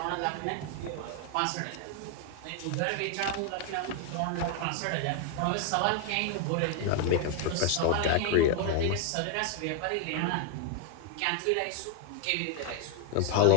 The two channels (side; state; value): both; different; correlation 0.00